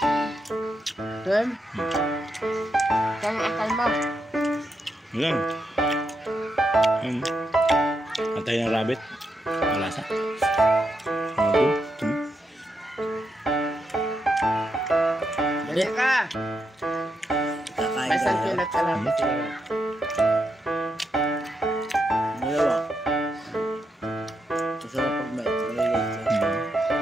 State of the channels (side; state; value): both; normal; correlation 0.83